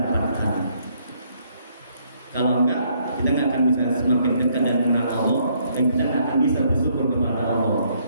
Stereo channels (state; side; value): inverted; both; correlation -0.69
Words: Kalau enggak, kita nggak akan bisa semakin dekat dan mengenal Allah, dan kita nggak akan bisa bersyukur kepada Allah.